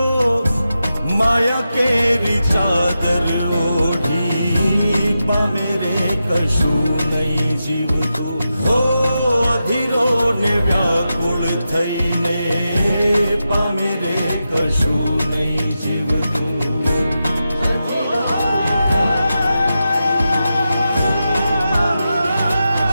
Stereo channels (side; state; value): both; inverted; correlation -0.89